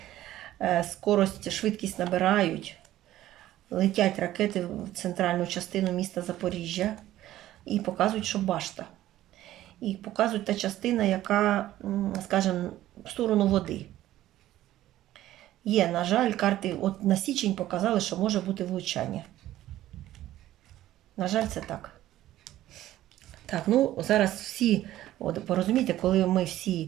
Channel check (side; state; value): left; quieter; 14.1 dB